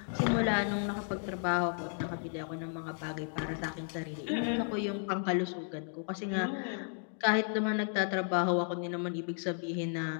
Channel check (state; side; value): silent; right; 55 dB below the other